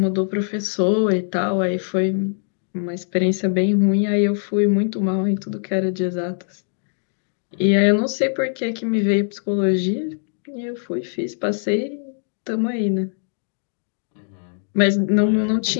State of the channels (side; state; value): right; silent; digital silence